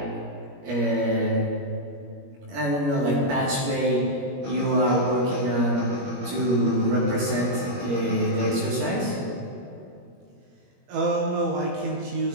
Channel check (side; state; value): left; late; 21 ms